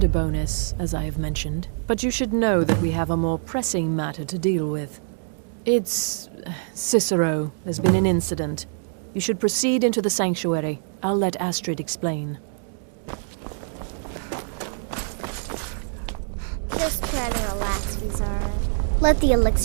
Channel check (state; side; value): silent; left; digital silence